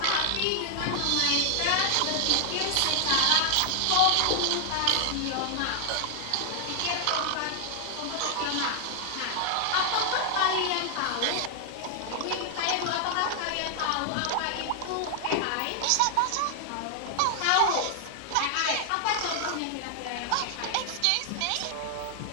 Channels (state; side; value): different; both; correlation 0.00